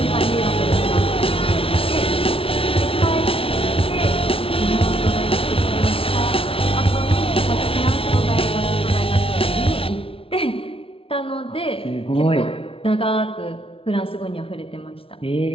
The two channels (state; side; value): late; right; 0.26 ms